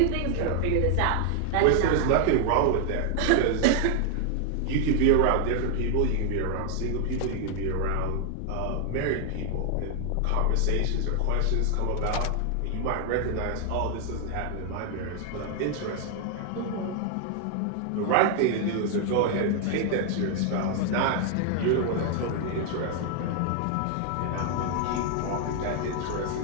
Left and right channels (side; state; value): both; different; correlation 0.00